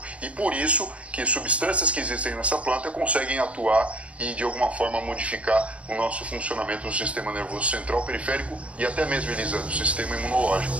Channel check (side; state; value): left; late; 0.064 ms